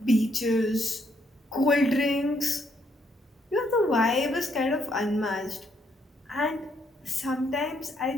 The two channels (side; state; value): both; normal; correlation 0.72